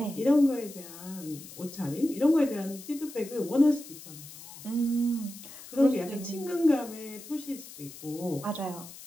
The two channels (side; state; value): left; noise; hiss, 16 dB below the sound